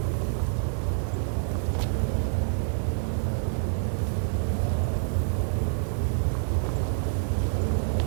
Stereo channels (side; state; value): left; silent; 60 dB below the other